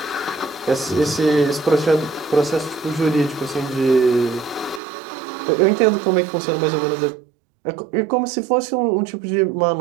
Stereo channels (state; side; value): drops out; left; at 4.8 s